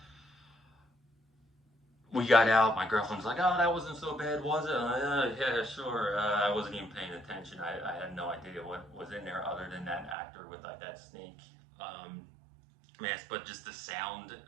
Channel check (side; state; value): left; drops out; at 10.2 s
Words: We got out. My girlfriend's like, "Oh, that wasn't so bad, was it?" I'm like, yeah, sure. I wasn't even paying attention. I had no idea what was in there other than that actor with like that snake mask. But just the sound